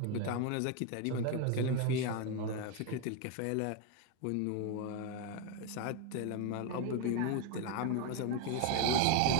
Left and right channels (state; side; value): different; both; correlation 0.01